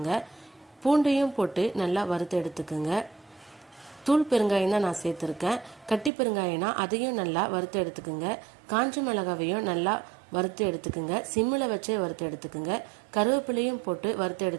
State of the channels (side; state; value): left; drops out; at 6.1 s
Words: பூண்டையும் போட்டு நல்லா வறுத்து எடுத்துக்குங்க. தூள் பெருங்காயம் தான் நான் சேர்த்துருக்கேன். கட்டி பெருங்காயம்னா அதையும் நல்லா வறுத்து எடுத்துக்குங்க. காஞ்ச மிளகாவையும் நல்லா வறுத்து எடுத்துக்குங்க. சிம்மில் வச்சே வறுத்து எடுத்துக்குங்க. கருவேப்பிலையும் போட்டு வறுத்து